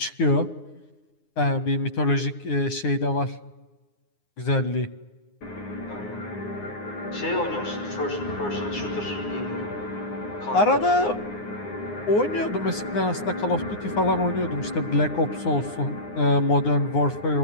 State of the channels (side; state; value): right; late; 9.7 ms